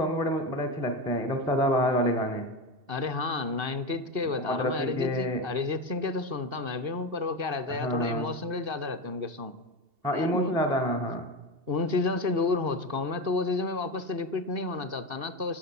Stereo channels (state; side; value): late; left; 2.7 ms